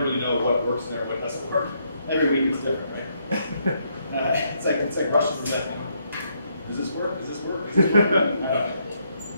really know what works and what doesn't work. Every week is different, right? It's like Russian roulette. Does this work? Does this work? Does this work? I don't know.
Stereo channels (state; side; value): inverted; both; correlation -0.75